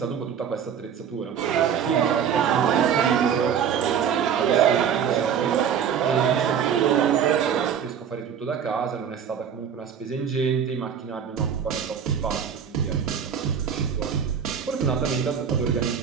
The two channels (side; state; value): left; quieter; 7.9 dB